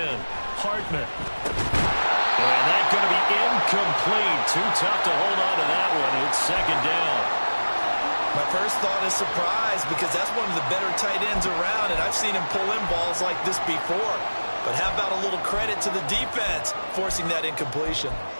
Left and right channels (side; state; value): both; inverted; correlation -1.00